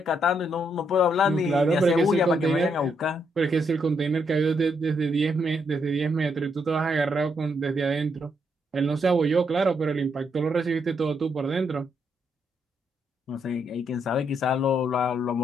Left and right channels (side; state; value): both; normal; correlation 0.76